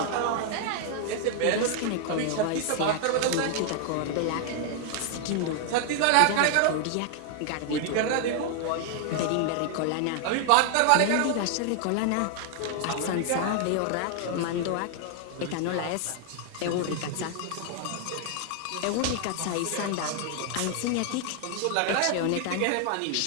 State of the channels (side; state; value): both; different; correlation 0.00